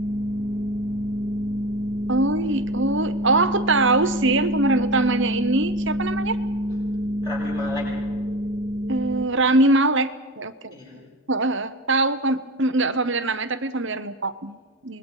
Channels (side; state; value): both; normal; correlation 0.25